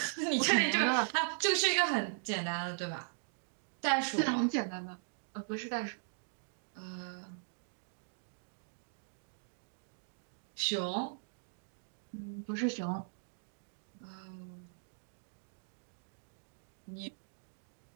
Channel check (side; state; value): left; silent; digital silence